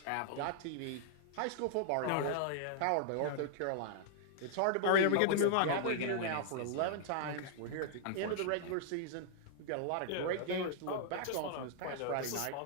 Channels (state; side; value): different; both; correlation -0.01